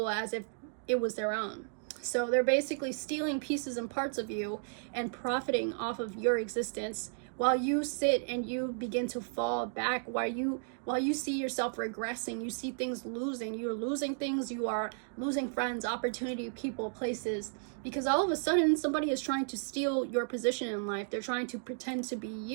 as if it was their own. So they're basically stealing pieces and parts of you and profiting off of your existence while you sit and you begin to fall back, while you see yourself regressing, you see things losing, you're losing things, you are losing friends, opportunity, people, places, because all of a sudden somebody is trying to steal your position in life. They're trying to pretend to be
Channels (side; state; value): left; silent; digital silence